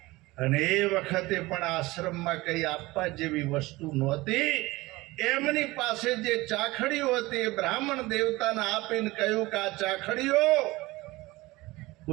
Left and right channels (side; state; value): left; quieter; 20.4 dB